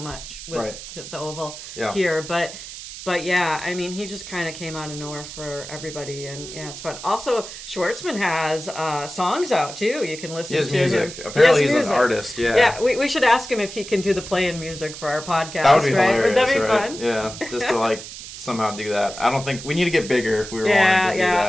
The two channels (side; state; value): right; noise; hiss, 12 dB below the sound